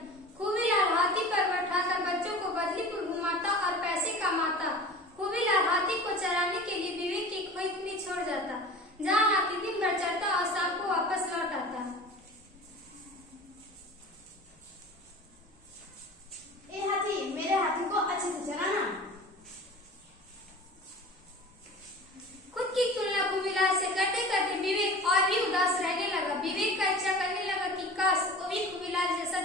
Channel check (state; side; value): normal; both; correlation 0.38